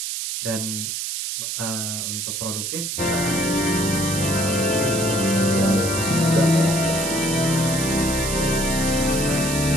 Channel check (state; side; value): noise; right; hiss, 3 dB below the sound